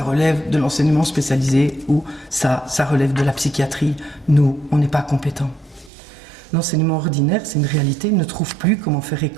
relève de l'enseignement spécialisé ou ça relève de la psychiatrie. Nous, on n'est pas compétents. L'enseignement ordinaire, c'est une réalité, il ne trouve plus comment faire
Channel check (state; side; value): drops out; left; at 5.9 s